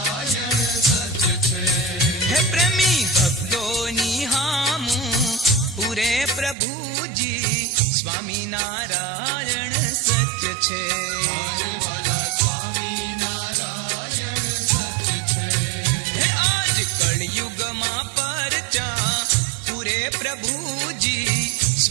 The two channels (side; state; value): left; drops out; at 6.6 s